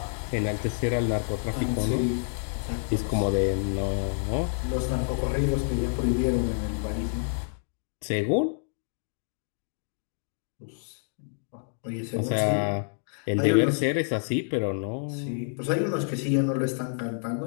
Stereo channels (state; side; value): silent; right; digital silence